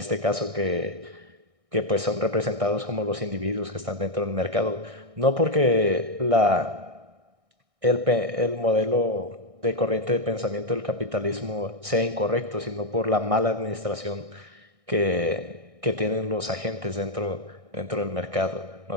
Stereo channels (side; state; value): left; late; 1.6 ms